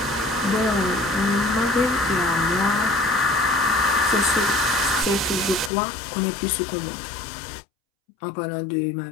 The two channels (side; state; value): right; drops out; at 5.7 s